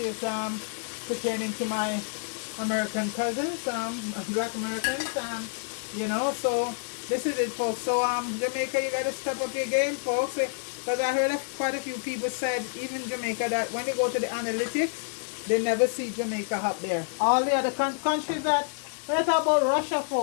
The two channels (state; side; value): silent; right; digital silence